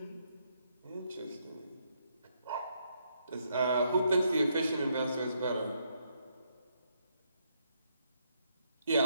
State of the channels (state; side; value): inverted; both; correlation -0.75